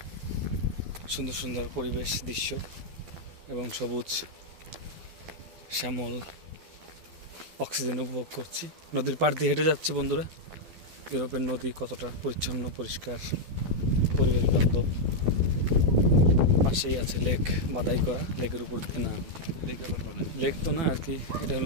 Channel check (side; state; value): left; late; 12 ms